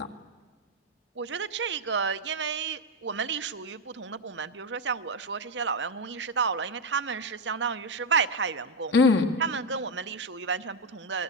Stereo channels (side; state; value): both; normal; correlation 0.06